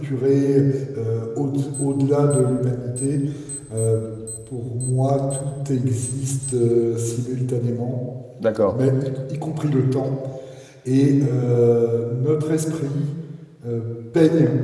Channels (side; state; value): both; identical; correlation 1.00